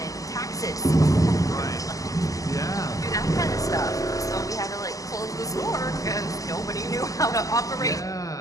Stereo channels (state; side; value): late; right; 0.17 ms